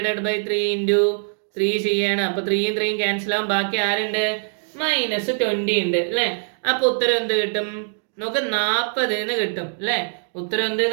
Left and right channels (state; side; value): silent; left; digital silence